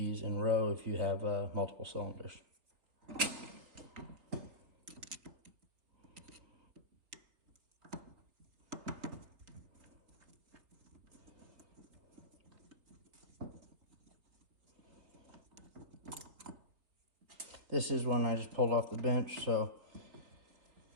in row if you have multiple cylinders. This is one I just pulled off the bench, so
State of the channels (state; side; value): late; left; 4.0 ms